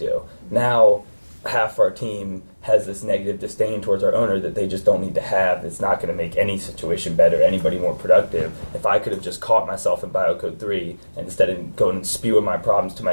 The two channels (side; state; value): both; inverted; correlation -1.00